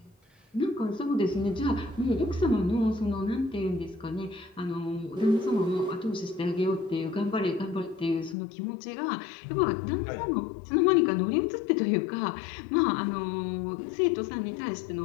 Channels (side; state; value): right; drops out; at 8.3 s